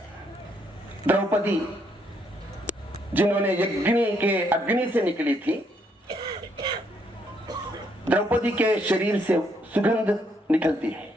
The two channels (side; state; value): both; normal; correlation 0.72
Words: द्रौपदी जिन्होंने यज्ञ के अग्नि से निकली थी, द्रौपदी के शरीर से सुगंध निकलती है।